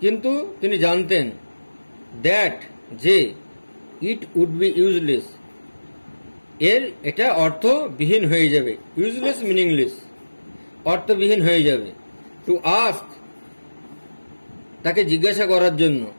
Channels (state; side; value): inverted; both; correlation -1.00